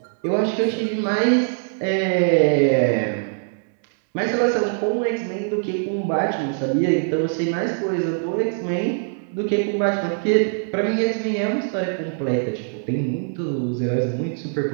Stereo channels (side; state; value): left; silent; digital silence